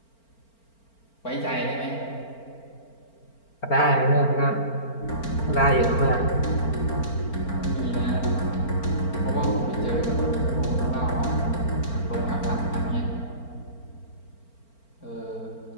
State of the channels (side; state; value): right; late; 4.4 ms